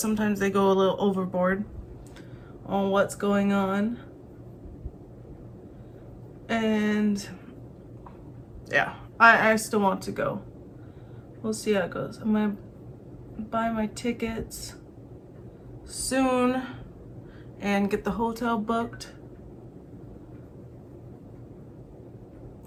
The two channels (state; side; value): identical; both; correlation 1.00